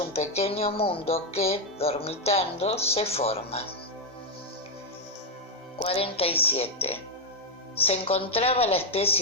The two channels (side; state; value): both; normal; correlation 0.01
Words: pequeño mundo que, dormitando, se forma. 47. ¿Se encontraba la